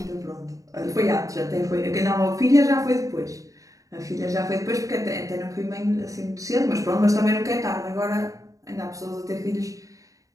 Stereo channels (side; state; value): left; late; 0.16 ms